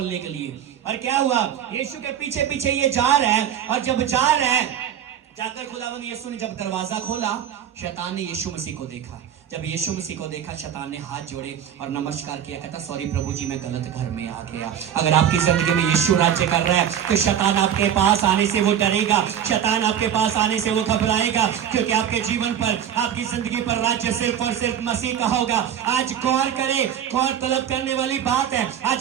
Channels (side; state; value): left; quieter; 9.5 dB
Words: के लिए। और क्या हुआ, यीशु के पीछे पीछे ये जा रहा है, और जब जा रहा है, जाकर खुदावंद यीशु ने जब दरवाजा खोला, शैतान ने यीशु मसीह को देखा। जब यीशु मसीह को देखा, शैतान ने हाथ जोड़े और नमस्कार किया, कहता सॉरी प्रभु जी, मैं गलत घर में आ गया। अगर आपकी जिंदगी में यीशु राज्य कर रहा है तो शैतान आपके पास आने से वो डरेगा, शैतान आपके पास आने से वो घबराएगा, क्योंकि आपके जीवन पर, आपकी जिंदगी पर राज्य सिर्फ और सिर्फ मसीह का होगा। आज गौर करे, गौर तलब करने वाली बात है,